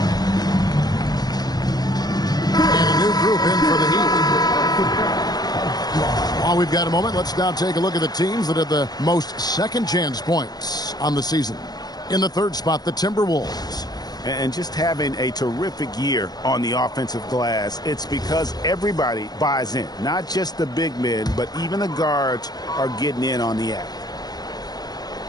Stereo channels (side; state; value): right; late; 0.19 ms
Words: Group in for the Heat. While we've got a moment, let's now take a look at the teams that had the most second chance points on the season. In the third spot, the Timberwolves. And just having a terrific year on the offensive glass, it's because everybody buys in. Not just the big men, but even the guards are getting in on the act.